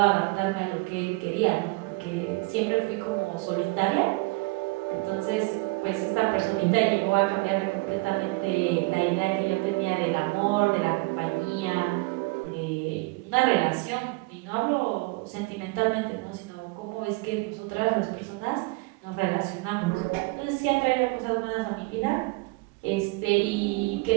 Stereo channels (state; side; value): quieter; left; 25.9 dB